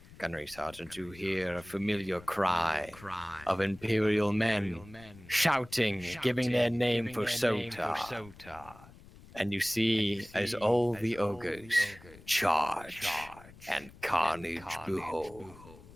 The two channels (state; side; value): noise; left; rumble, 21 dB below the sound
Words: Gunnery Sergeant, you hear a familiar cry of Imperial men shouting, giving their name for Sota. And you see as all the ogres charge and carnage behold.